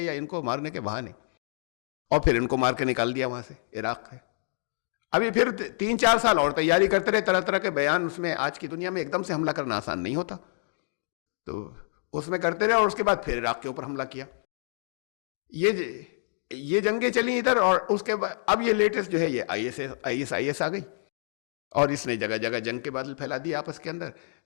یا ان کو مارنے کے بہانے, اور پھر ان کو مار کے نکال دیا وہاں سے عراق سے. ابھی پھر 3-4 سال اور تیاری کرتے رہے, طرح طرح کے بیان. اس میں آج کی دنیا میں ایک دم سے حملہ کرنا آسان نہیں ہوتا, تو اس میں کرتے رہے, اور اس کے بعد پھر عراق کے اوپر حملہ کیا. یہ جنگیں چلی ادھر, اور اس کے بعد اب یہ لیٹسٹ جو ہے یہ IS آ گئی, اور اس نے جگہ جگہ جنگ کے بادل پھیلا دیے آپس کے اندر.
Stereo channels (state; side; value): silent; right; digital silence